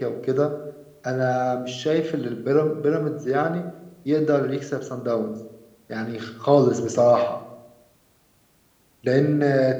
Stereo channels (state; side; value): identical; both; correlation 1.00